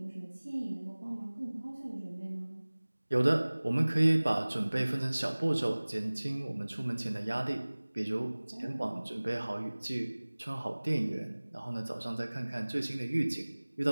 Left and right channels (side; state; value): both; inverted; correlation -1.00